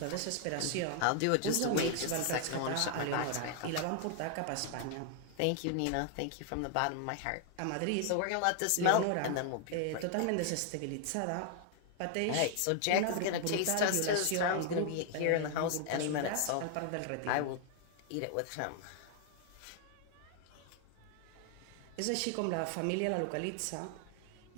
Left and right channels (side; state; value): both; different; correlation 0.00